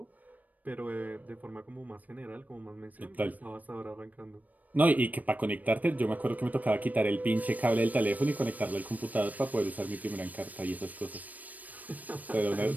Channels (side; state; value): left; late; 0.077 ms